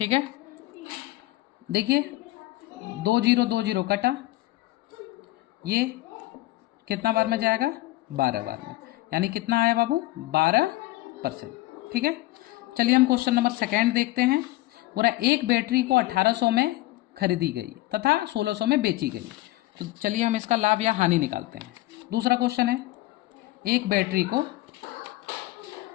है। देखिए 20 कटा, ये कितना बार में जाएगा? 12 बार में, यानी कितना आया बाबू? 12%, ठीक है। चलिए हम क्वेश्चन नंबर 2 देखते हैं। पूरा एक बैटरी को 1800 में खरीदी गई तथा 1600 में बेची गई। तो चलिए हम इसका लाभ या हानि निकालते हैं। दूसरा क्वेश्चन है, एक बैटरी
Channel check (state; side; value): quieter; right; 18.5 dB